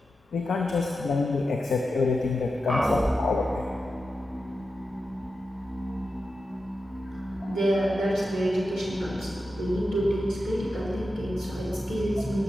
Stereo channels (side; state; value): both; normal; correlation 0.90